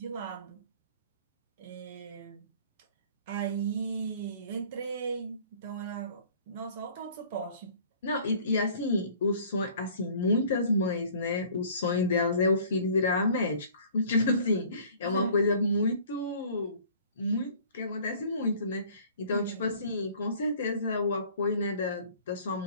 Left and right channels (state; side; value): inverted; both; correlation -0.51